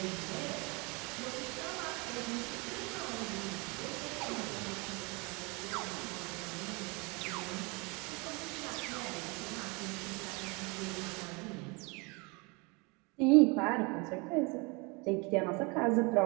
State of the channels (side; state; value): left; quieter; 28.9 dB